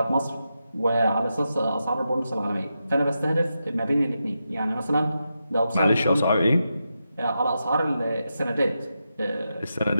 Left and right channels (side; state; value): both; inverted; correlation -0.87